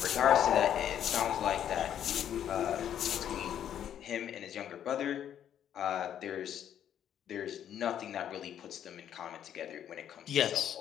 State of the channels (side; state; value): right; quieter; 9.9 dB